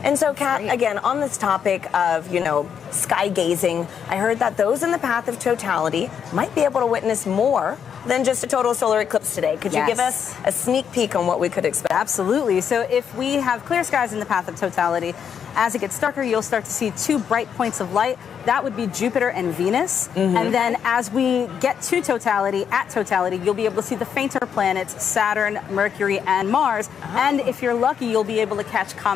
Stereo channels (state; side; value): quieter; right; 7.7 dB